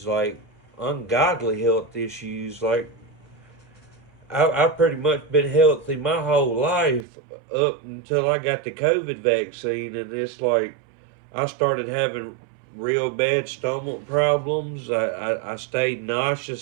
like ungodly health issues. Like I've pretty much been healthy my whole life up until I got the COVID vaccine, and it's like I started having real bad stomach problems. I stayed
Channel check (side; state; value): left; drops out; at 7.1 s